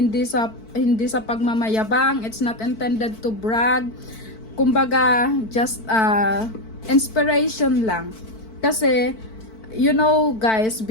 sa pagmamayabang. It's not intended to brag. Kumbaga, just inspiration lang. Kasi, you know guys,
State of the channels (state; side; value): late; right; 4.5 ms